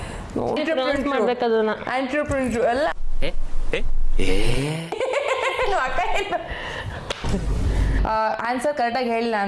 ಮಾಡ್ಬೇಕದನ್ನ. ಆಂಟ್ರಪ್ರಿನ್ರು ಎಲ್ಲ ಆನ್ಸರ್ ಕರೆಕ್ಟಾಗಿ ಹೇಳಿಲ್ಲ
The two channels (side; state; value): both; identical; correlation 1.00